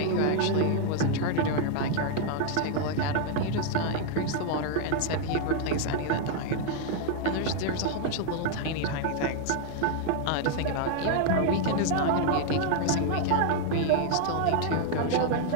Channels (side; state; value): both; different; correlation 0.00